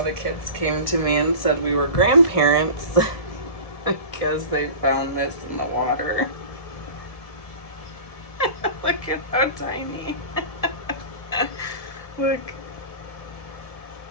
the kids came to me and said we were grandparents because they found this in the water. Look at how tiny. Look.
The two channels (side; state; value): right; late; 1.7 ms